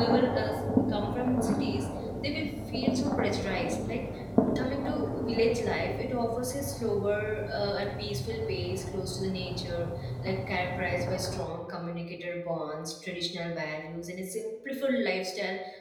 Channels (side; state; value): both; identical; correlation 1.00